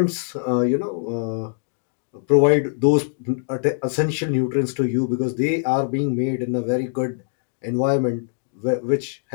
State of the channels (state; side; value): silent; right; 64 dB below the other